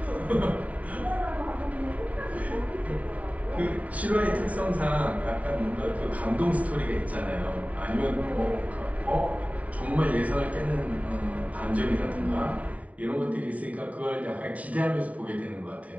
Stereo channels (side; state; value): left; late; 0.070 ms